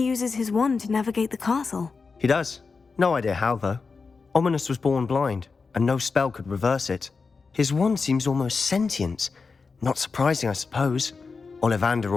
uses his wand to navigate the castle. He does. No idea how, though. Ominous was born blind, and no spell could reverse it. His wand seems almost sentient. Not surprising, I suppose. Ollivander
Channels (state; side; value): quieter; right; 4.7 dB